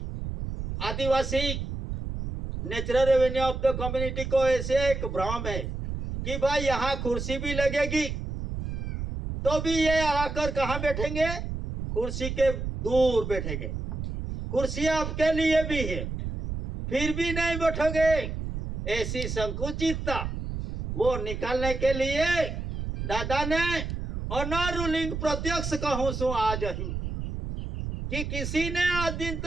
आदिवासी natural revenue of the community को ऐसे एक भ्रम है कि भाई यहाँ कुर्सी भी लगेगी, तो भी ये आकर कहाँ बैठेंगे? कुर्सी के दूर बैठेंगे। कुर्सी आपके लिए भी है, फिर भी नहीं बैठोगे। ऐसी संकुचितता वो निकालने के लिए दादा ने ऑनर रूलिंग प्रत्यक्ष कहूं सु आज ही, कि किसी ने आज दिन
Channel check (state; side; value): noise; right; rumble, 5 dB below the sound